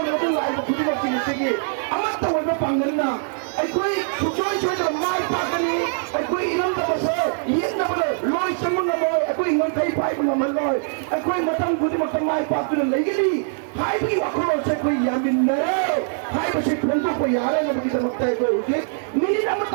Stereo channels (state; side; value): silent; left; 64 dB below the other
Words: tu lain bah pulau sini sini. Amat tahu apa panggilan na? Ekor cuci dalam mai pakai ni, ekor inam tu masih, ini tu betul. Loi semua ngamal, ekor ingat kai pai ngamal loi, ekor matang putih matang mai pakai ni lagi ni. Hai pergi waktu saya kau yang benar. Hai masih untuk bayar yang lebih termakai kau ini. Ni nama